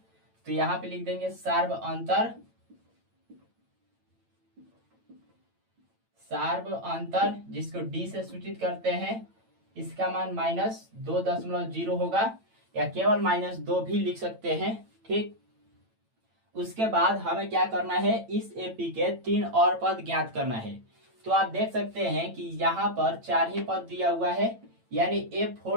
तो यहाँ पे लिख देंगे सार्वअंतर, सार्वअंतर जिसको D से सूचित करते हैं, इसका मान -2.0 होगा, या केवल -2 भी लिख सकते हैं। ठीक, उसके बाद हमें क्या करना है, इस AP के 3 और पद ज्ञात करना है। तो आप देख सकते हैं कि यहाँ पर 4 ही पद दिया हुआ है, यानी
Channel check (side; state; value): left; late; 8.9 ms